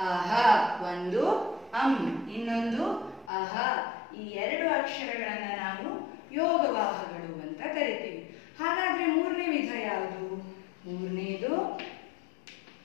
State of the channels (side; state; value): right; drops out; at 3.3 s